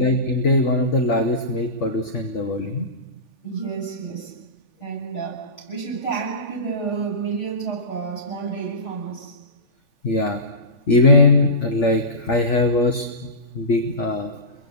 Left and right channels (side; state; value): right; late; 3.4 ms